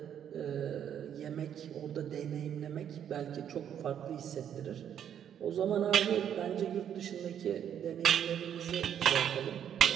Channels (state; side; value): quieter; left; 9.3 dB